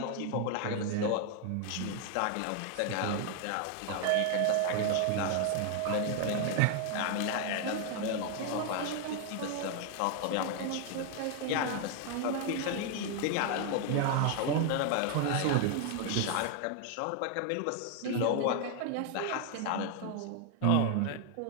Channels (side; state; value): both; different; correlation 0.00